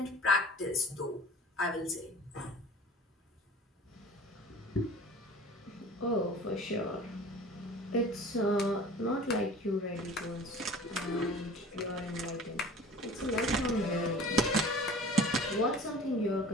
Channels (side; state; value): both; normal; correlation 0.43